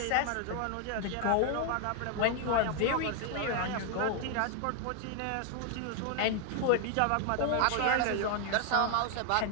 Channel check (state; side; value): different; both; correlation 0.00